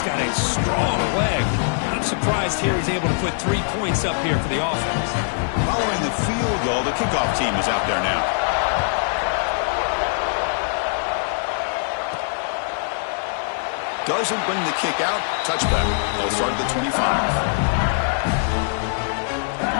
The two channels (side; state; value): right; silent; digital silence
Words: got a strong leg. I'm surprised here he's able to put 3 points up here for the offense. Following the field goal, the kickoff team is out there now. Doesn't bring the kick out. Touchback. They'll start at the 25. And